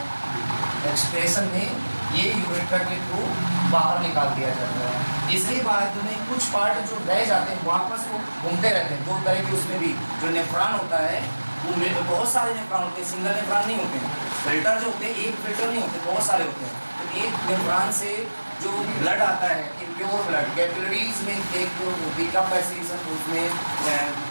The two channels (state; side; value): inverted; both; correlation -1.00